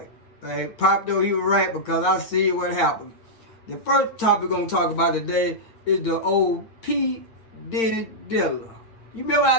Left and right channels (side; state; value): right; late; 8.9 ms